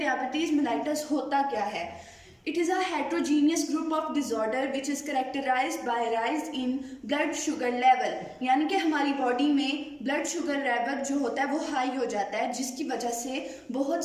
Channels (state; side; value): identical; both; correlation 1.00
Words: मेलाइटस होता क्या है। It is a heterogeneous group of disorder which is characterized by rise in blood sugar level, यानी कि हमारी बॉडी में ब्लड शुगर लेवल जो होता है वो हाई हो जाता है, जिसकी वजह से